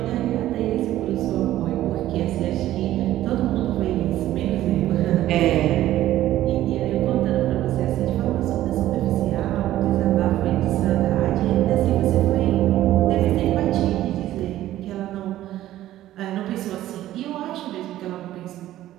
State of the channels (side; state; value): left; quieter; 13.9 dB